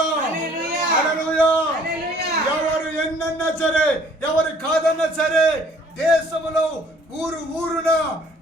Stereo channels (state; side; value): normal; both; correlation 0.57